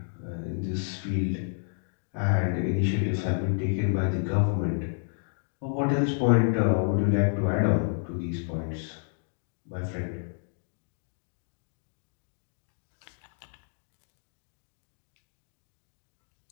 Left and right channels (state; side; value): silent; right; digital silence